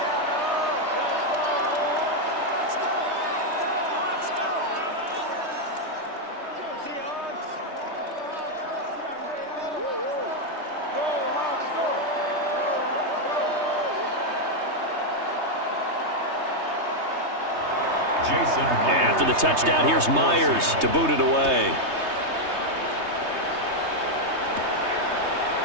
After the touchdown, here's Myers to boot it away.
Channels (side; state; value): left; late; 3.2 ms